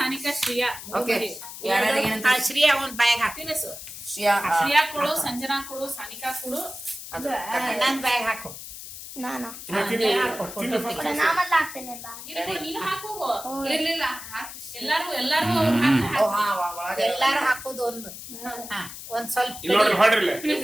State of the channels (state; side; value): noise; left; hiss, 12 dB below the sound